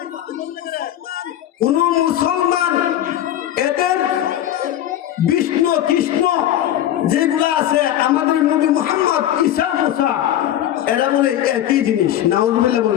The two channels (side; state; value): right; quieter; 12.0 dB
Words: এদের বিষ্ণু কৃষ্ণ যেগুলো আছে আমাদের নবী মুহাম্মদ ঈসা মুসা এরা বলে একই জিনিস। নাউজুবিল্লাহ